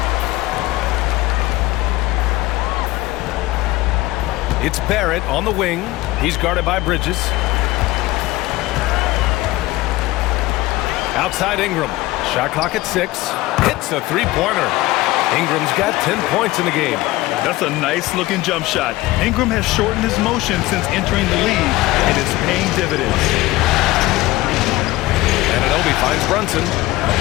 8. It's Barrett on the wing. He's guarded by Bridges. Outside Ingram. Shot clock at 6. Hits a three-pointer. Ingram's got 10 points in the game. That's a nice-looking jump shot. Ingram has shortened his motion since entering the league, and it's paying dividends. Anunoby finds Brunson.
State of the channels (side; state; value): right; quieter; 18.6 dB